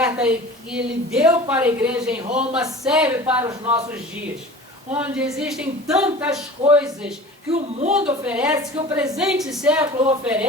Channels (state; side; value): normal; both; correlation 0.40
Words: que ele deu para a igreja em Roma serve para os nossos dias, onde existem tantas coisas que o mundo oferece, que o presente século